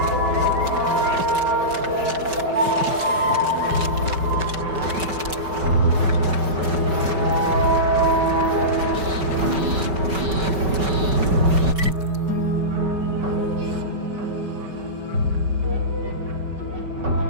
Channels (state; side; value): late; left; 5.2 ms